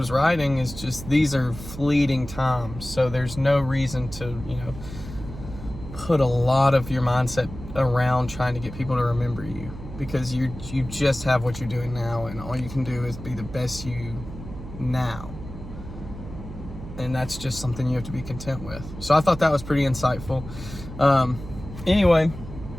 writing, is just, these are fleeting times. So there's no reason to, put a lot of your mindset around trying to get people to remember you, because you just have what you're doing now, and all you can do is be the best you now. And that's just something you have to be content with. So I thought that was pretty insightful. Anyway,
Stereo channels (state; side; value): noise; right; hum, 12 dB below the sound